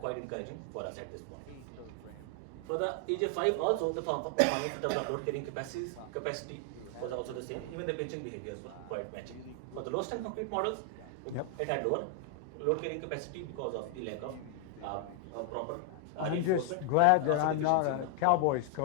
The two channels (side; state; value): both; different; correlation 0.00